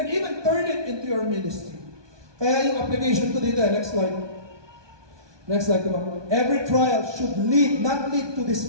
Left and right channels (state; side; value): late; left; 1.2 ms